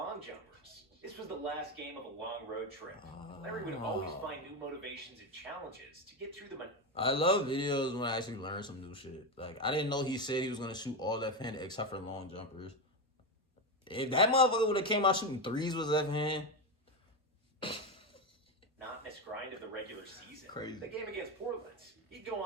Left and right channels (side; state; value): both; normal; correlation 0.13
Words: jumpers. This was the last game of a long road trip. Larry would always find new motivations and challenges to get through the I love videos when I actually learn some new shit. Like, I didn't know he said he was going to shoot all left-handed except for long jumpers. If that motherfucker would have came out shooting threes with left-hand. monotonous grind of the regular season. Crazy. The game against Portland, he'd go